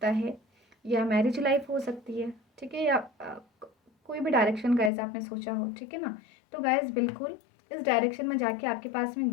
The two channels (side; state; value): right; drops out; at 4.9 s